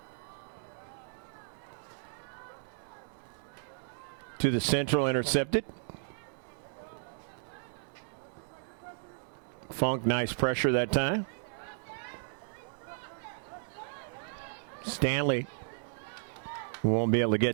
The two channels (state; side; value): silent; left; digital silence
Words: To the central, intercepted. Funk, nice pressure that time. Stanley won't be able to